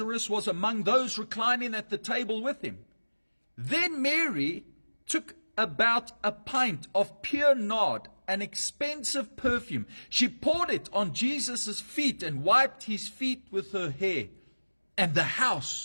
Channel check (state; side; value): inverted; both; correlation -1.00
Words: was among those reclining at the table with him. Then Mary took about a pint of pure nard, an expensive perfume. She poured it on Jesus' feet and wiped his feet with her hair. And the